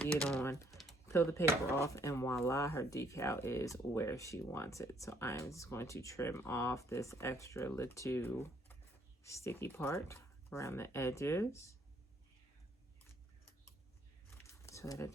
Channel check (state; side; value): normal; both; correlation 0.66